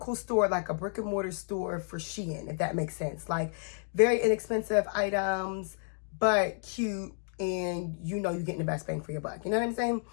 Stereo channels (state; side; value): silent; right; 57 dB below the other